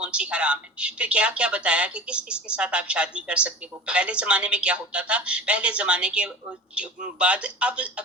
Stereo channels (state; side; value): normal; both; correlation 0.35